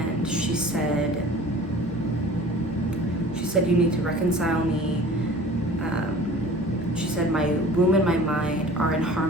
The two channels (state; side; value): normal; both; correlation 0.44